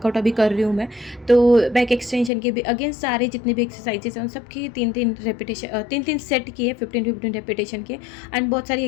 अभी कर रही हूँ मैं। तो बैक एक्सटेंशन के भी अगेन सारे जितने भी एक्सरसाइजेस हैं उन सब की 3 सेट किए, 15 रेपिटेशन के। एंड बहुत सारी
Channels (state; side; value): drops out; right; at 2.3 s